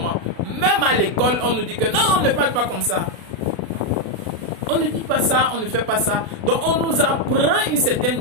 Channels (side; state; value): left; late; 36 ms